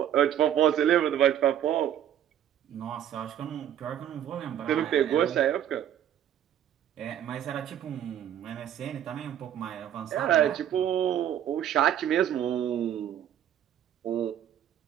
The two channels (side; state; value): left; quieter; 10.4 dB